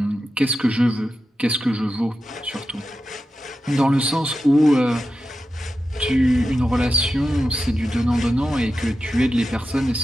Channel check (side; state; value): both; normal; correlation 0.91